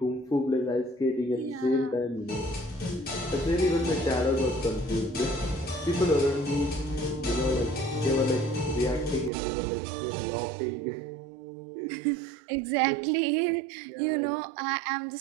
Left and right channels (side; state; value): left; drops out; at 9.3 s